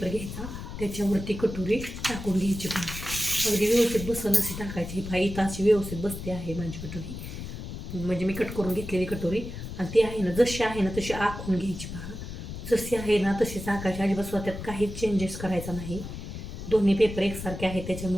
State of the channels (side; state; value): left; noise; rumble, 8 dB below the sound